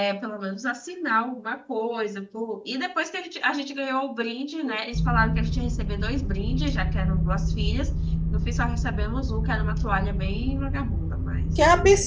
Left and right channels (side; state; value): both; identical; correlation 1.00